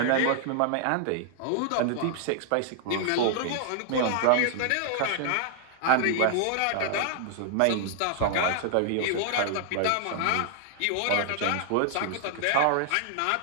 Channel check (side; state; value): both; different; correlation 0.00